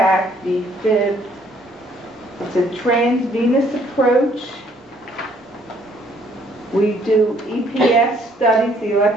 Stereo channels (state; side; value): normal; both; correlation 0.64